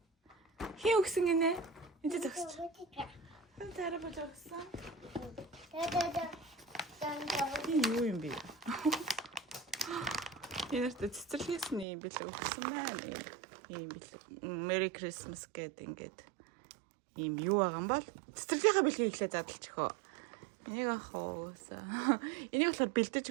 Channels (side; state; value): left; drops out; at 11.9 s